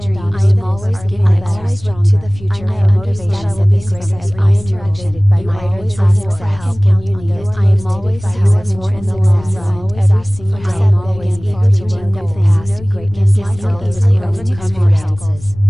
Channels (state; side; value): noise; left; rumble, 17 dB below the sound